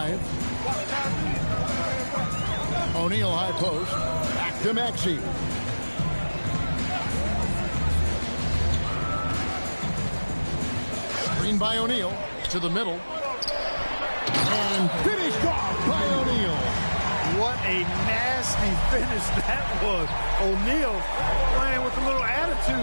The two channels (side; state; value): both; inverted; correlation -1.00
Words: O'Neal high post. Back to Maxey. Screen by O'Neal to the middle. And finished off by O'Neal. What a nasty finish that was. O'Neal playing with a little